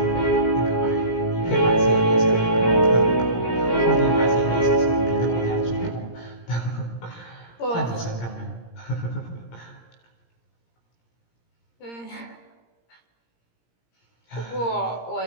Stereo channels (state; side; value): late; right; 17 ms